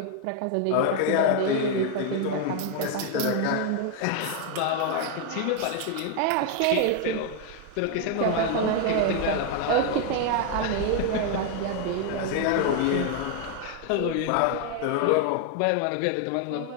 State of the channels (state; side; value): different; both; correlation 0.01